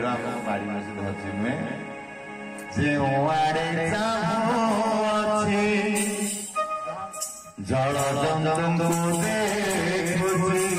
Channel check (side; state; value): both; identical; correlation 1.00